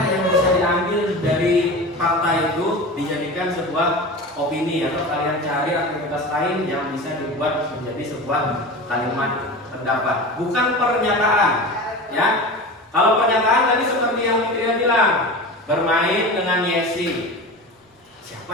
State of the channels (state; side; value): normal; both; correlation 0.30